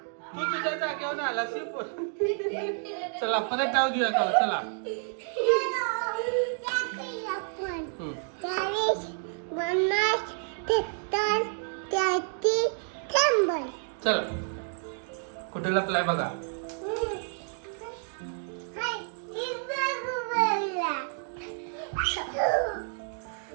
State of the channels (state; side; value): silent; left; 55 dB below the other